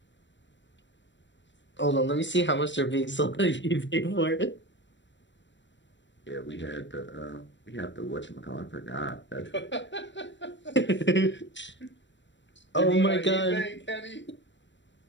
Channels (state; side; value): late; right; 0.53 ms